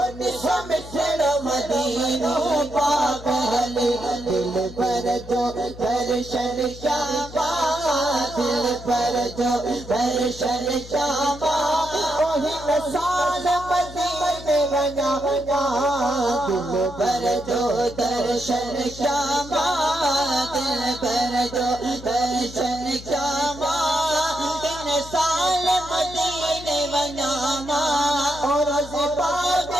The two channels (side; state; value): left; noise; hum, 15 dB below the sound